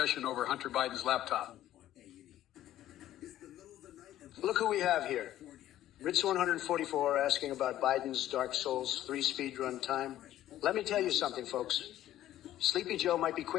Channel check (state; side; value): quieter; right; 13.2 dB